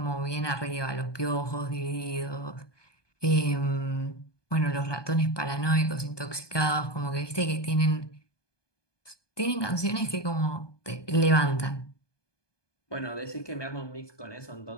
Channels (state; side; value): late; right; 1.2 ms